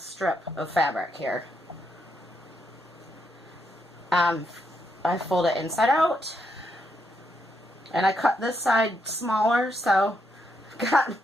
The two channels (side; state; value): both; normal; correlation 0.79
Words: of fabric here. I fold it inside out, and I cut this side smaller, so I've got